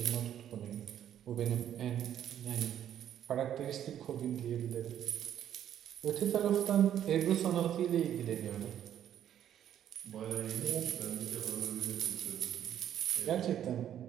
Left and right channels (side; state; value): left; quieter; 10.4 dB